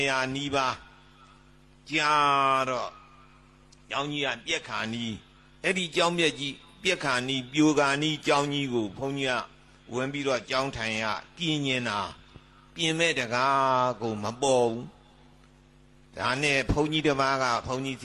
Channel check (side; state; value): both; identical; correlation 1.00